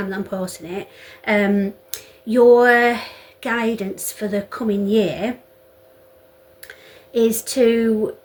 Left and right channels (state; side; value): identical; both; correlation 1.00